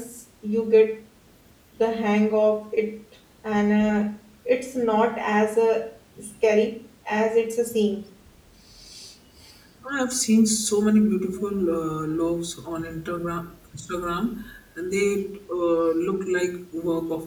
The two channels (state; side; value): identical; both; correlation 1.00